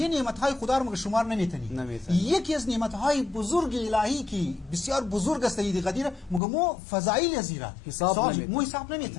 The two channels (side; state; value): right; drops out; at 6.4 s